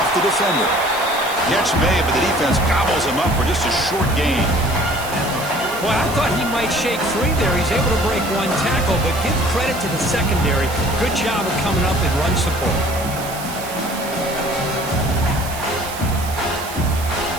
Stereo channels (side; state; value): right; noise; hiss, 12 dB below the sound